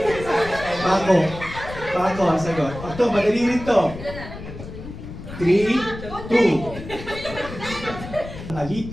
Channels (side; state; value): left; noise; rumble, 12 dB below the sound